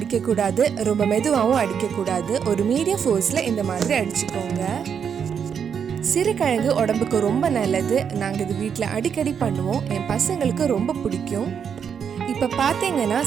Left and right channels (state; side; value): quieter; left; 7.4 dB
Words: ரொம்ப மெதுவாகவும் அடிக்கக்கூடாது. ஒரு மீடியம் ஃபோர்ஸில் இந்த மாதிரி அடிச்சுக்கோங்க. சிறுகிழங்கு உடம்புக்கு ரொம்ப நல்லது. நாங்கள் இது வீட்டில் அடிக்கடி பண்ணுவோம். என் பசங்களுக்கு ரொம்ப பிடிக்கும். இப்போ பார்த்தீங்கன்னா